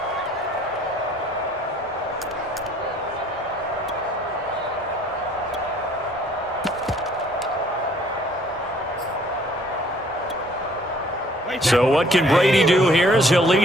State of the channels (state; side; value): normal; both; correlation 0.59